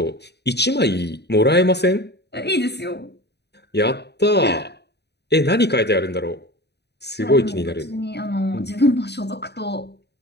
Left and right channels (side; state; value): right; late; 0.49 ms